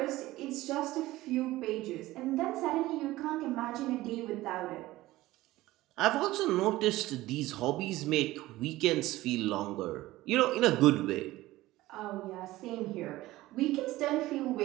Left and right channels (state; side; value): quieter; left; 17.3 dB